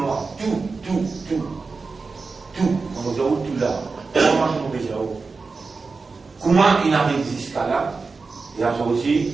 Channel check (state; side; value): quieter; left; 4.3 dB